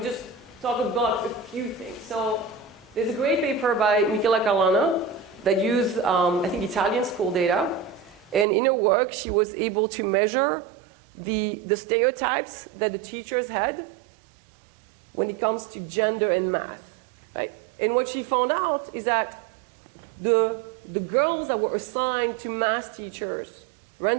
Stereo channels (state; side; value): drops out; left; at 8.5 s